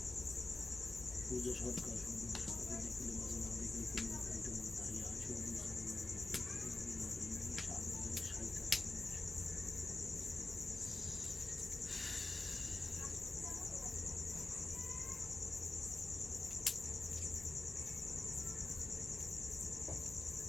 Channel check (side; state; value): right; quieter; 3.1 dB